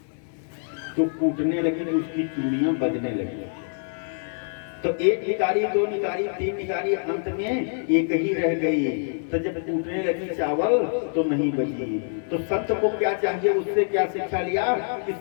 तो कूटने लगी तो उसकी चूड़ियां बजने लगी। तो एक निकारी, दो निकारी, तीन निकारी, अंत में एक ही रह गई। तो जब टूटने लगी चावल तो नहीं बची। तो संत को क्या चाहिए, उससे क्या शिक्षा लिया कि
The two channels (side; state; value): right; silent; 61 dB below the other